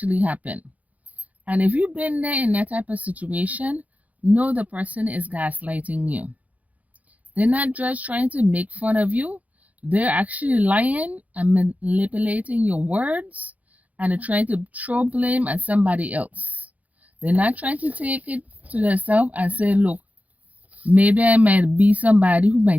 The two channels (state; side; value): late; left; 0.074 ms